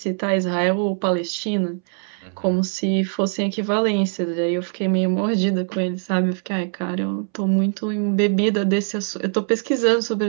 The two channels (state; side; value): silent; left; 64 dB below the other